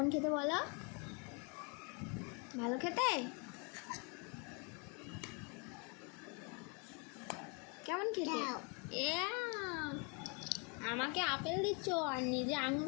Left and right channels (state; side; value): quieter; right; 33.9 dB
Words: খেতে বলো? ভালো খেতে? কেমন খেতে? আমাকে আপেল দিচ্ছ আর নিজে আঙুর